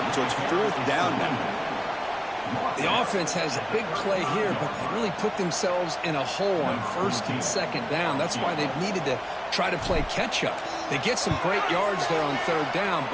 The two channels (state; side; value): identical; both; correlation 1.00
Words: so it's fourth down now. The offense has a big play here, but they really put themselves in a hole on first and second down. That's why they've needed to try to play catch-up. They get some great yards there on third down,